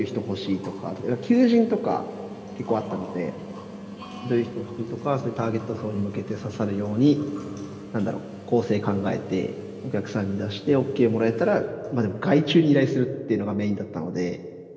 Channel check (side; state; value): both; identical; correlation 1.00